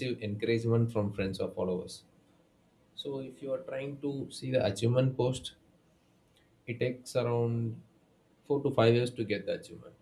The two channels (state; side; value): identical; both; correlation 1.00